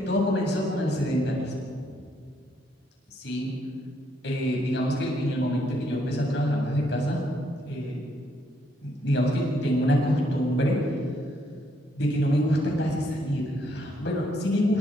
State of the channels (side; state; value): both; normal; correlation 0.72